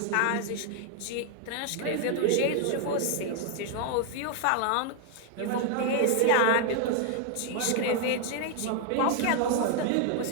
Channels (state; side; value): different; both; correlation 0.00